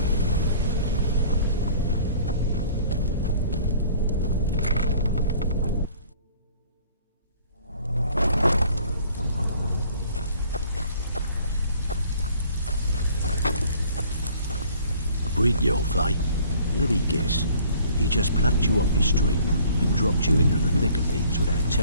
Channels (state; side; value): inverted; both; correlation -0.54